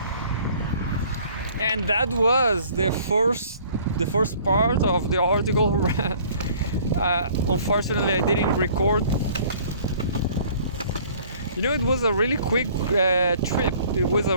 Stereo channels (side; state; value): both; inverted; correlation -0.54